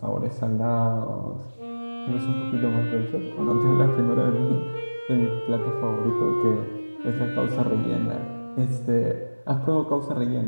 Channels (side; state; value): both; inverted; correlation -1.00